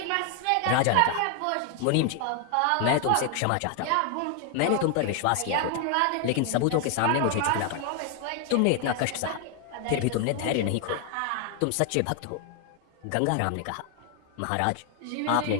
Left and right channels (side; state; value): both; different; correlation 0.00